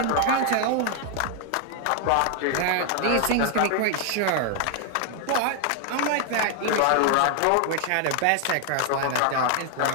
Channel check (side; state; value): both; different; correlation 0.00